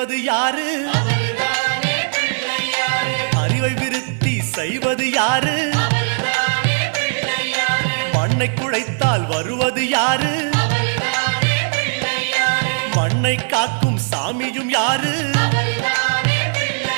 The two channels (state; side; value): silent; left; digital silence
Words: யாரு? அறிவை விருத்தி செய்வது யாரு? மண்ணை குழைத்தால் வருவது யாரு? மண்ணை காக்கும் சாமியும் யாரு?